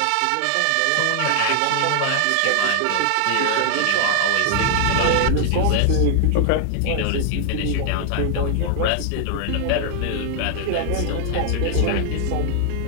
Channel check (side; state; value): both; different; correlation 0.00